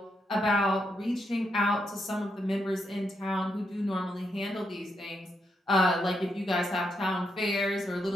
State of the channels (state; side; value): normal; both; correlation 0.81